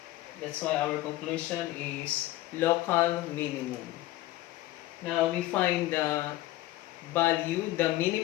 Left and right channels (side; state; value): right; quieter; 16.3 dB